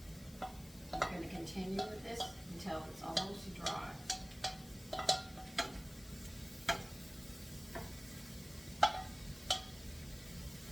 You're going to continue with this until it's almost dry.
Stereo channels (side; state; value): left; noise; hiss, 19 dB below the sound